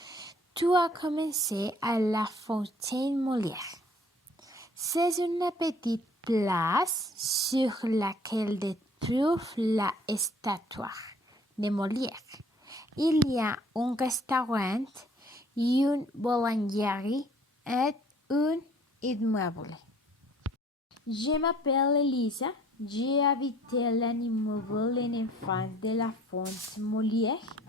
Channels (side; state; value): both; normal; correlation 0.55